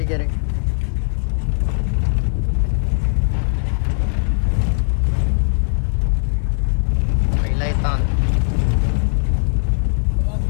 गे रे. पहिला ताण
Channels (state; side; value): silent; right; 67 dB below the other